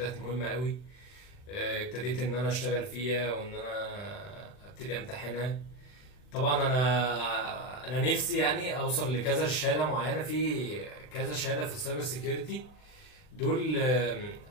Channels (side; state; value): right; late; 40 ms